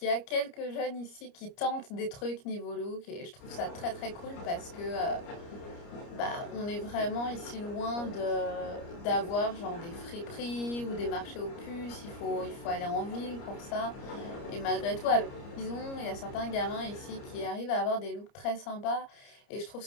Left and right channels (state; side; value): late; right; 29 ms